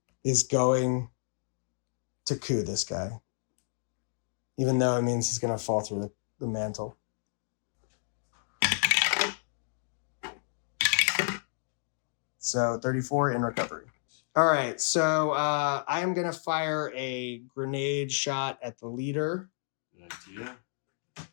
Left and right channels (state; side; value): silent; right; digital silence